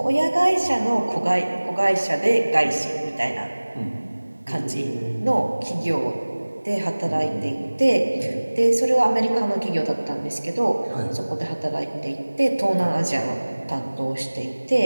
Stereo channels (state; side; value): inverted; both; correlation -1.00